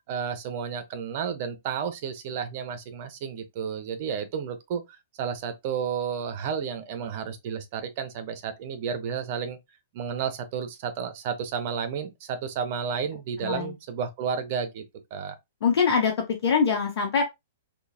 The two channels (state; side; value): inverted; both; correlation -0.33